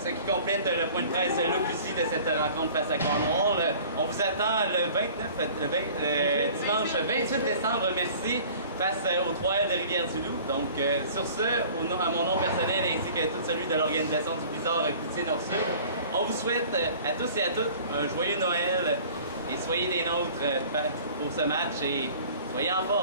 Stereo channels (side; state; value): both; inverted; correlation -0.47